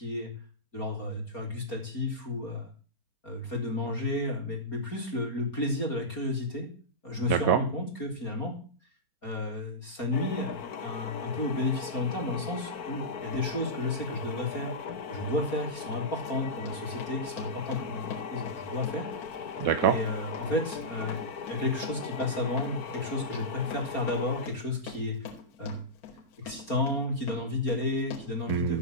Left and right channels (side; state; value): right; late; 4.3 ms